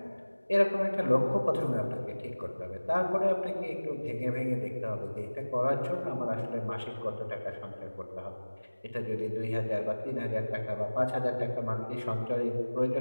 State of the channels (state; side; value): inverted; both; correlation -1.00